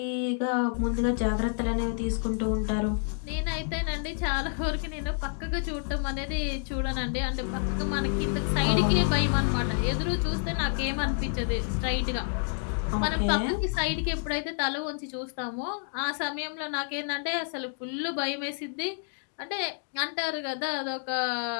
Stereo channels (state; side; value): silent; right; 59 dB below the other